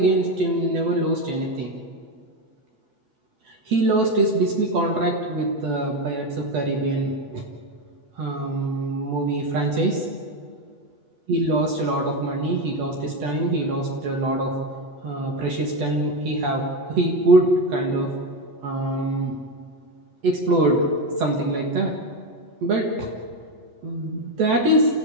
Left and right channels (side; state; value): left; late; 8.1 ms